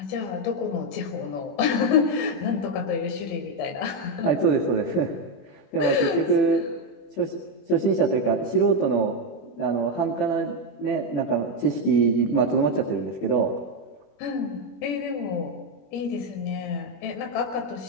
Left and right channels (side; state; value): right; late; 21 ms